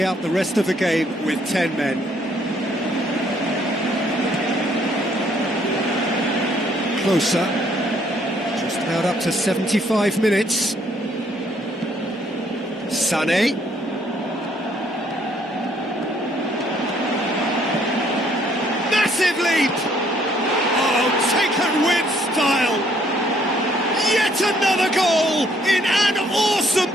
out the rest of the game with 10 men. Closer. Just about up to 75 minutes. Sané. Massive leap! Oh, taken with style! Yet another goal in an awesome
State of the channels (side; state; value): both; normal; correlation 0.66